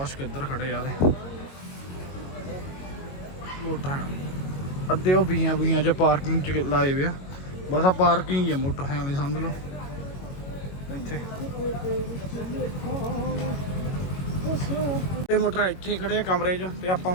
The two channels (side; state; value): right; late; 22 ms